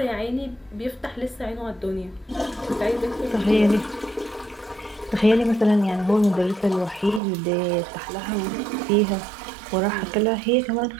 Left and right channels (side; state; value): left; drops out; at 7.2 s